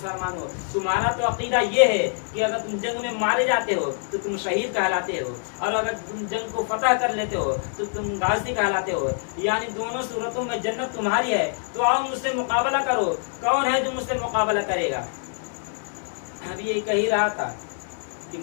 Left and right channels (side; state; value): right; silent; digital silence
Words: तुम्हारा तो अकीदा ये है कि अगर तुम जंग में मारे जाते हो तो तुम शहीद कहलाते हो, और अगर तुम जंग को फतह कर लेते हो तो तुम गाजी कहलाते हो, यानी दोनों सूरतों में जन्नत तुम्हारी है। तो आओ मुझसे मुकाबला करो, कौन है जो मुझसे मुकाबला करेगा। अभी ये कह ही रहा था कि